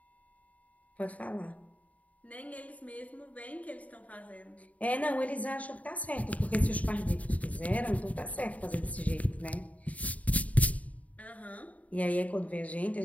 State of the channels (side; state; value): right; late; 0.070 ms